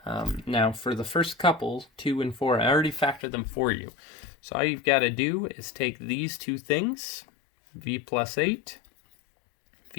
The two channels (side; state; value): right; drops out; at 3.2 s